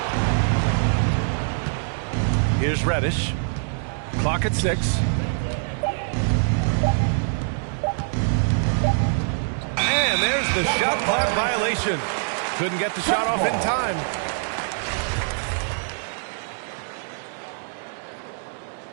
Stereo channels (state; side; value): silent; left; digital silence